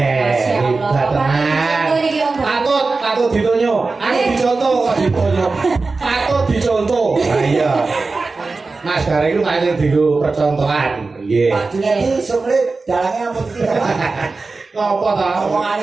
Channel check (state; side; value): quieter; left; 3.9 dB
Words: tenan. Patut ditonyo. Aku dicontoh kok ditonyo. Patut dicontoh. Lah iya. Mas Gareng itu paling digo percontohan. Nggih. Pak Junedi sulit dalangnya ampun iki ya, Pak. Ngopo to?